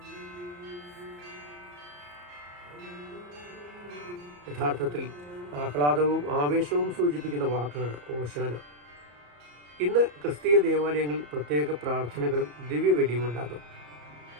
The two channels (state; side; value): late; left; 34 ms